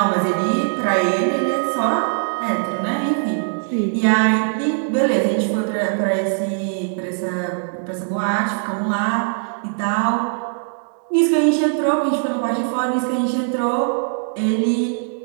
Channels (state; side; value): silent; left; digital silence